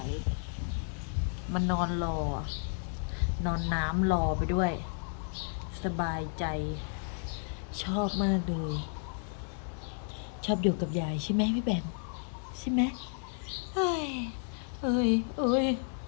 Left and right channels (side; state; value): right; silent; 56 dB below the other